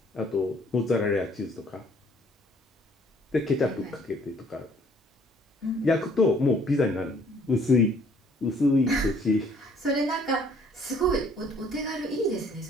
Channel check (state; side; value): normal; both; correlation 0.60